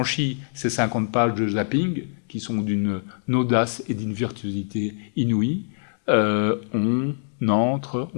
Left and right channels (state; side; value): silent; right; 63 dB below the other